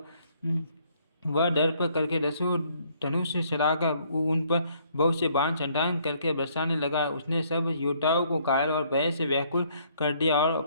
वह दर्प करके दसों धनुष से चढ़ाकर उन पर बहुत से बाण छंटांग करके बरसाने लगा। उसने सब योद्धाओं को घायल और भय से व्याकुल कर दिया और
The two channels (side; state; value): both; inverted; correlation -0.66